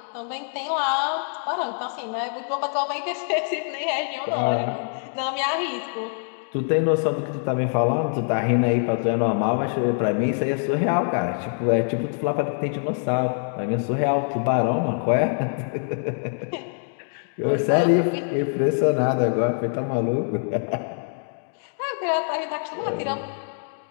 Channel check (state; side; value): silent; right; digital silence